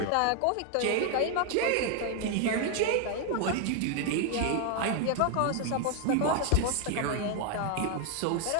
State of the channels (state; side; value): different; both; correlation 0.01